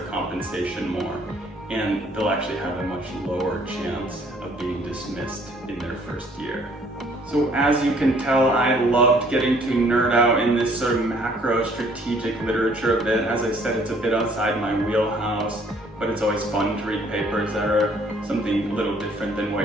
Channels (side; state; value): both; normal; correlation 0.60